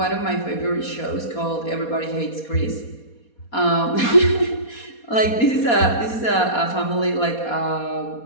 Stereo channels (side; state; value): right; late; 4.2 ms